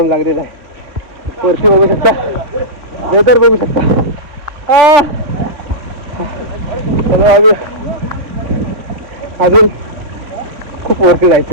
लागलेला आहे. वरती बघू शकता, वेदर बघू शकता. चलो आम्ही अजून खूप वरती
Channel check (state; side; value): late; left; 3.6 ms